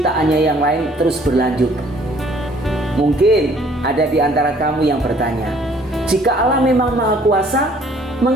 yang lain terus berlanjut. Mungkin ada di antara kamu yang bertanya, jika Allah memang Maha Kuasa,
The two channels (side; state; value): both; normal; correlation 0.59